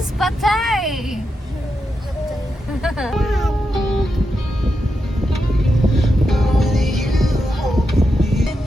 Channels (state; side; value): normal; both; correlation 0.86